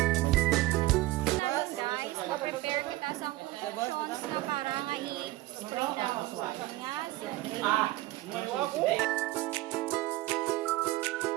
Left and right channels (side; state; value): left; quieter; 17.9 dB